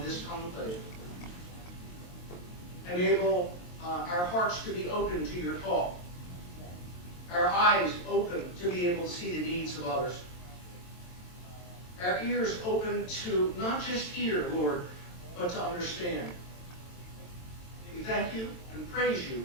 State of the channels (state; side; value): late; right; 22 ms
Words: this conclave. Enable our hearts to be open to your call, our eyes open to be able to see the needs of others, our ears open to not just hear, Lord, but to understand. We thank you and praise you